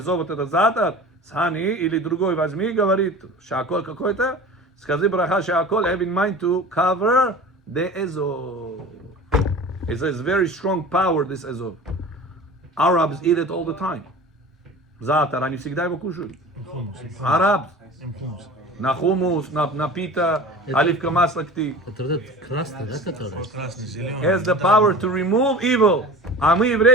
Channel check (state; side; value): normal; both; correlation 0.38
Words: вот этот затор с honey, или другой возьми, говорит, she'akol какой-то, скажи браха she'akol, have in mind to cover the Ezov. It says very strong power, this Ezov. Arabs eat it all the time. Затор, они всегда его кушают. Arabs. На хумус, на пита, оливка масло кти. Это вот этот красный, да, который? Красный, зеленый. Has the power to remove evil. А мы,